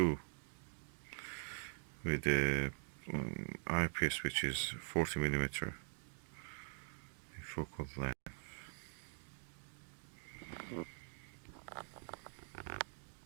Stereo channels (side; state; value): left; silent; digital silence